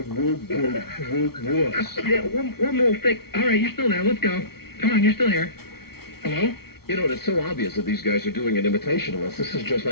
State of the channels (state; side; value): late; right; 0.95 ms